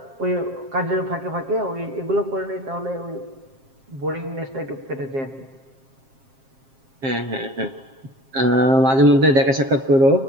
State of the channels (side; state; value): left; late; 7.5 ms